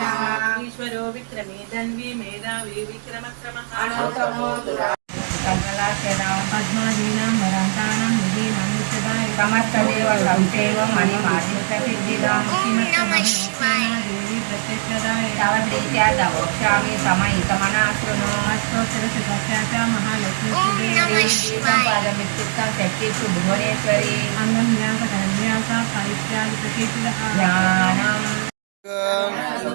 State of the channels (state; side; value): silent; left; digital silence